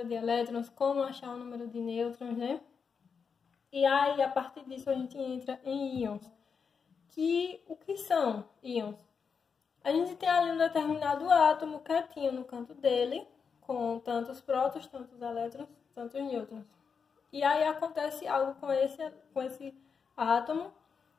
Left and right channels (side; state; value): right; quieter; 6.0 dB